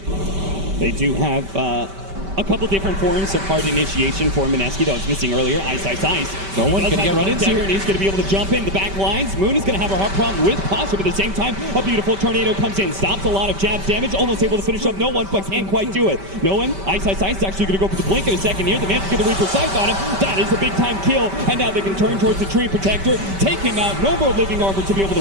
They do have a couple different forms of hard initiation for Mineski that was missing earlier. Ice. No one's going to get run into. He's going to be able to jump in the back lines. Moon is going to have a hard problem with Pasha, but at the same time, a beautiful tornado comes in, stops a lot of jabs damage, almost able to finish up no one, but can't quite do it. No one. Ice is actually going to go for the blink in a second here. The man's going to Reaper Sight on him. That is a big time kill, and now they can turn towards the Tree Protector, take him out. No more living armor to be able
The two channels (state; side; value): late; left; 5.1 ms